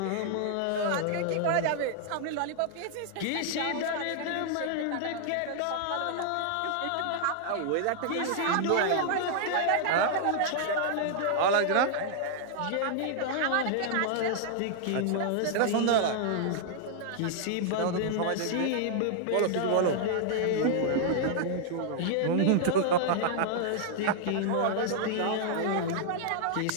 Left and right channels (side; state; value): both; different; correlation -0.01